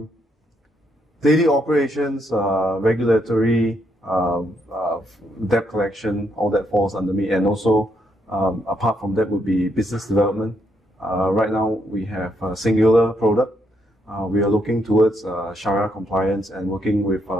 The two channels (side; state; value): both; normal; correlation 0.75